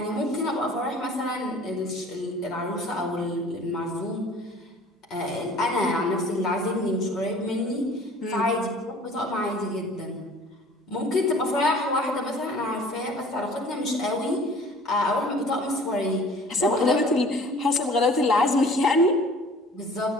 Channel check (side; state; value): both; normal; correlation 0.49